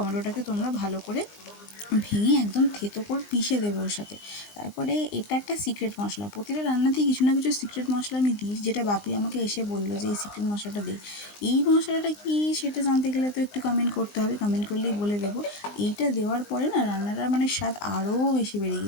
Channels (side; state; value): right; late; 19 ms